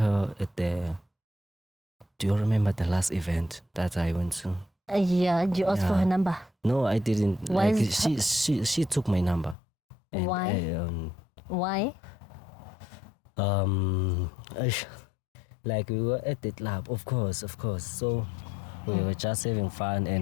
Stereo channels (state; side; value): drops out; right; at 9.6 s